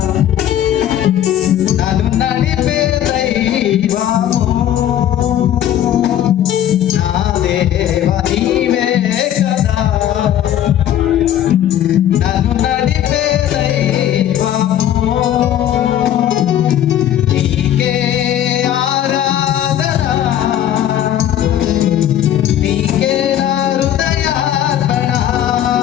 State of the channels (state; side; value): quieter; right; 11.2 dB